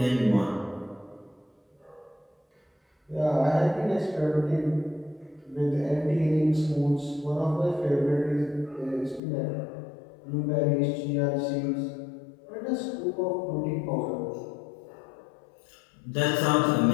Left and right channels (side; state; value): right; drops out; at 9.2 s